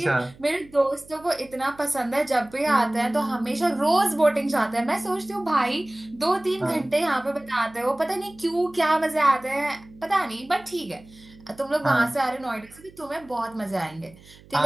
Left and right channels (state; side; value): noise; right; hum, 24 dB below the sound